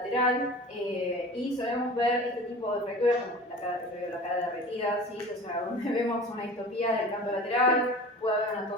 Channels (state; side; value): normal; both; correlation 0.38